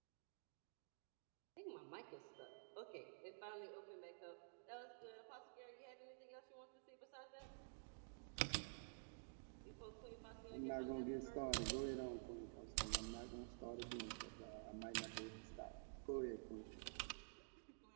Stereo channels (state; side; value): silent; left; digital silence